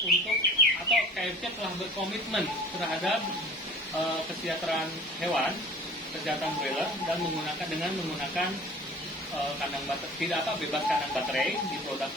untuk, atau KFC telah berkomitmen terhadap kesejahteraan hewan, kesehatan broiler, dan menggunakan kandang baterai, bebas kandang baterai di produk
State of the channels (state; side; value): normal; both; correlation 0.44